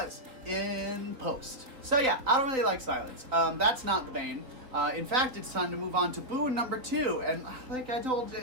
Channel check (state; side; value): late; left; 3.5 ms